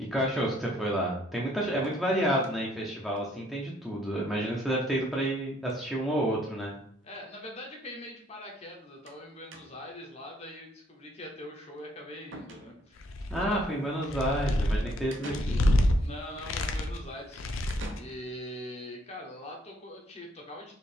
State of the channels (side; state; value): both; normal; correlation 0.66